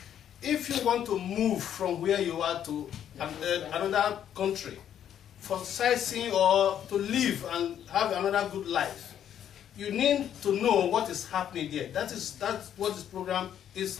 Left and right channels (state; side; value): quieter; right; 9.8 dB